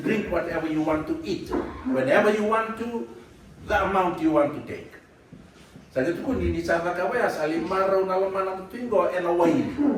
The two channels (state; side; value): identical; both; correlation 1.00